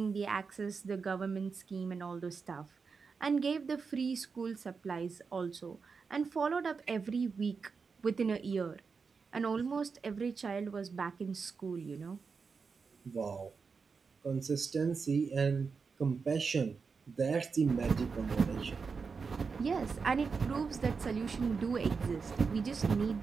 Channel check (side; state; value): left; quieter; 5.2 dB